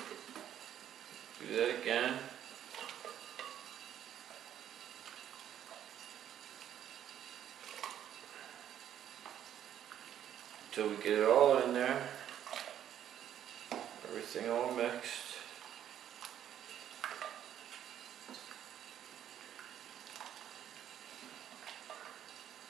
Do that again. Until we get it all in there. Everything all mixed.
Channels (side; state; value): left; quieter; 10.4 dB